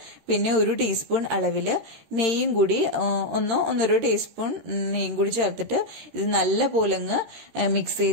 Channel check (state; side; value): late; left; 13 ms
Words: പിന്നെ 1 ടീസ്പൂൺ അളവില് നെയ്യും കൂടി 1-1.5 ടീസ്പൂൺ നെയ്യും കൂടി ചേർത്തിട്ട് ഇത് നല്ല പോലെ അങ്ങ് മിക്സ്